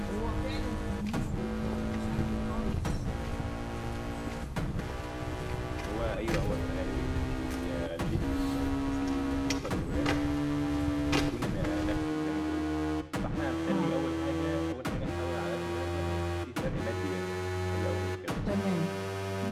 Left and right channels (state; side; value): identical; both; correlation 1.00